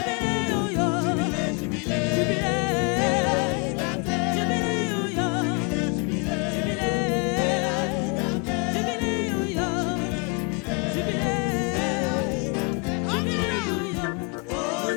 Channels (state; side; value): quieter; right; 34.0 dB